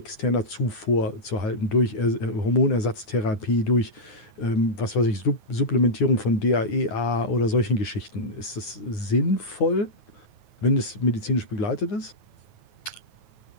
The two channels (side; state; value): right; late; 9.8 ms